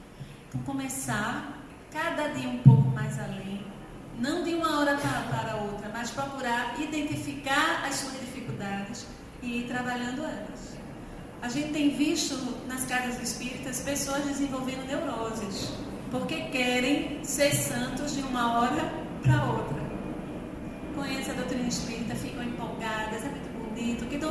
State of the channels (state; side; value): identical; both; correlation 1.00